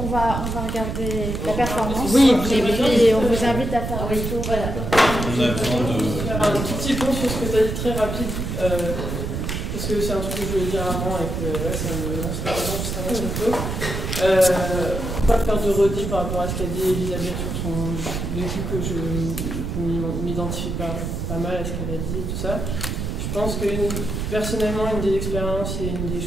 va regarder la performance. Oui, et puis on vous invite à faire un retour. Voilà. On a besoin de faire un tout petit point sur ce que tu as dit très rapide, parce que c'est un truc que je voulais dire avant et que là ça me lance la raison juste un peu. Pas faire de redit par rapport à ce qu'a dit Elisabeth sur son vécu, que je m'identifie pas mal à ce qu'elle a dit et tout ça. Je pense que personnellement, une des expériences et une des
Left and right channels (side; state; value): right; noise; rumble, 3 dB below the sound